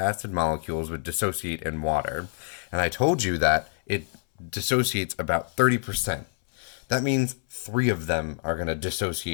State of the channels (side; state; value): right; silent; 60 dB below the other